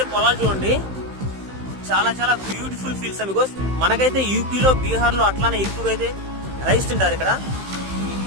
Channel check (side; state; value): left; late; 15 ms